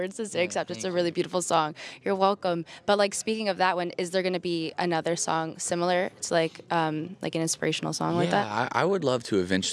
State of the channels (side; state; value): both; identical; correlation 1.00